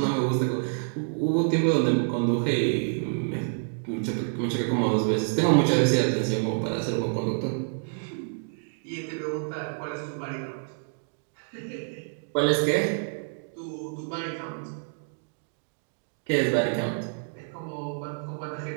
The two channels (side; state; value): left; silent; digital silence